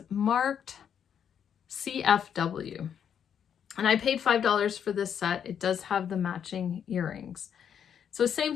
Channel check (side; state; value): right; quieter; 8.3 dB